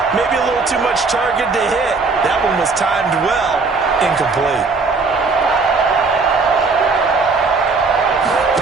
maybe a little too much target to hit. That one was timed well. Incomplete.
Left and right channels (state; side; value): quieter; left; 4.2 dB